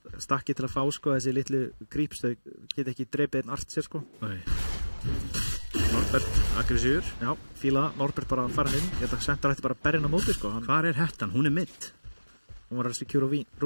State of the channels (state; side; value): inverted; both; correlation -1.00